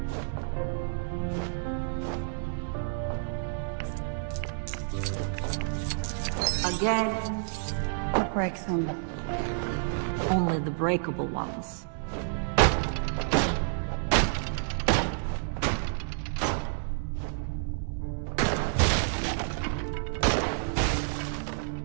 Again. What breaks them? Only the breakable ones.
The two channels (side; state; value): left; silent; 58 dB below the other